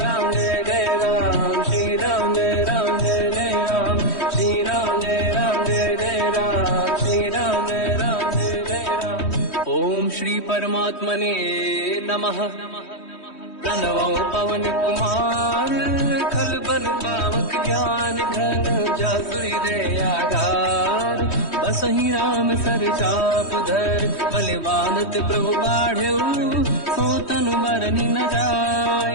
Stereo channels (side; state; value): right; late; 3.1 ms